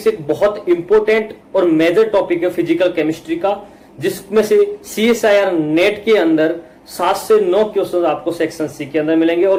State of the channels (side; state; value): both; identical; correlation 1.00